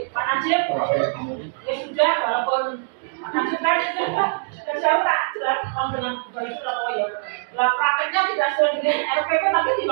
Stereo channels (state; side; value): silent; left; digital silence